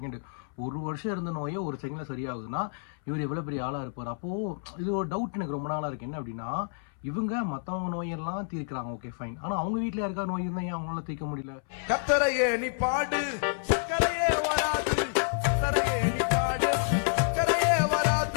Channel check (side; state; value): right; silent; 58 dB below the other